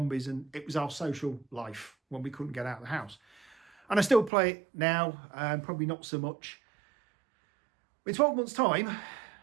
And it was our social life when we couldn't get out of the house. And I still play it now, probably not so much. In 12 months' time,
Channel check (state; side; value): drops out; left; at 4.3 s